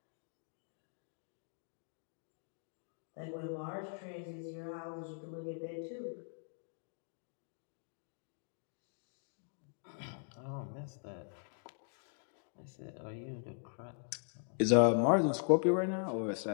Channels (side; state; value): right; silent; digital silence